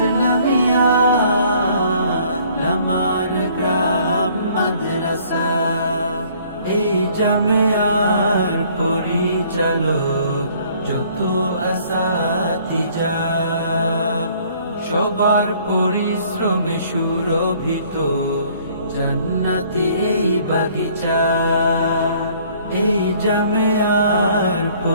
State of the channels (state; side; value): inverted; both; correlation -0.59